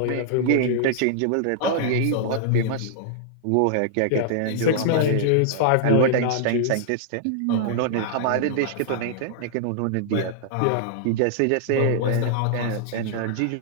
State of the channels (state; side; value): different; both; correlation -0.01